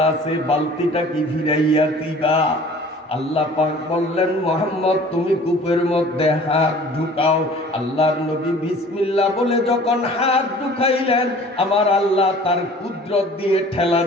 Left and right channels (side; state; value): both; normal; correlation 0.48